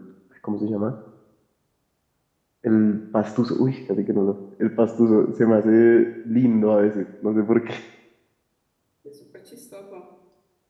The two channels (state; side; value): identical; both; correlation 1.00